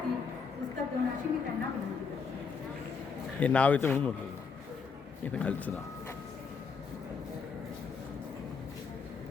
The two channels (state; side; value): quieter; right; 5.5 dB